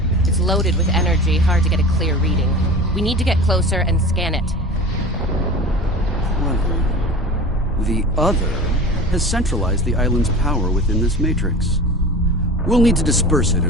It's loaded with energy, hard to get a clear reading. We need to get closer and scan it. Clever. The other has centralized the island's power within this matrix. We'll need to disperse it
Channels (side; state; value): both; normal; correlation 0.36